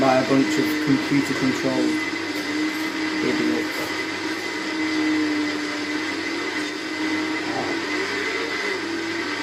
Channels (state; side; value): identical; both; correlation 1.00